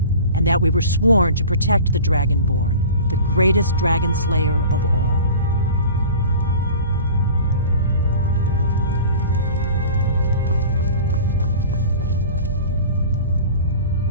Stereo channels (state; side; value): inverted; both; correlation -0.39